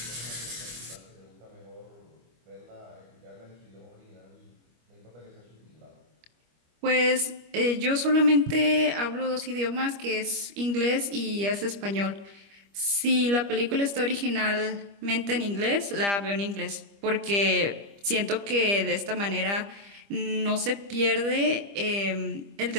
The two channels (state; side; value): late; left; 25 ms